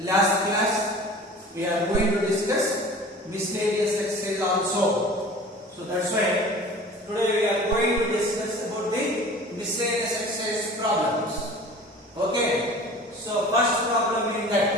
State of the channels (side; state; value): both; normal; correlation 0.42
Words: class, we are going to discuss miscellaneous exercise also. So that's why today we are going to discuss about the miscellaneous exercise problems. Okay. So first problem is